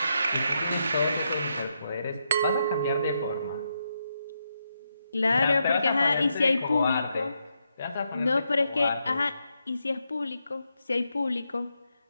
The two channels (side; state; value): both; inverted; correlation -0.82